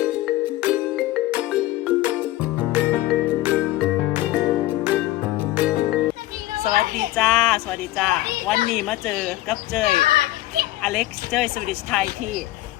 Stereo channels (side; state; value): right; quieter; 16.4 dB